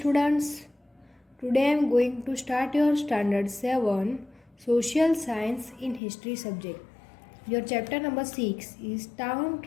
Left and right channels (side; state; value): right; drops out; at 6.0 s